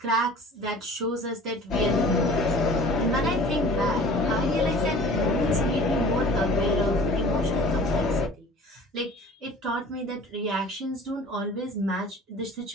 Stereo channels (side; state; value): both; normal; correlation 0.45